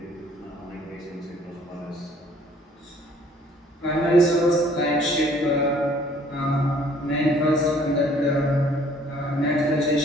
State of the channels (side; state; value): both; normal; correlation 0.58